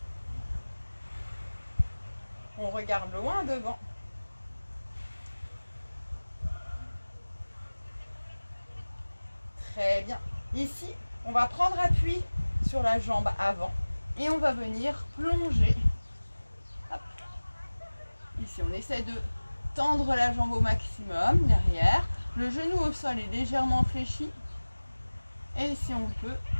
On regarde loin devant. Très bien. Ici, on va prendre appui sur la jambe avant et on va venir plonger. Hop. Ici, on essaie de tendre la jambe au maximum derrière. Le genou au sol est légèrement fléchi. Et si on peut,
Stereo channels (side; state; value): both; inverted; correlation -1.00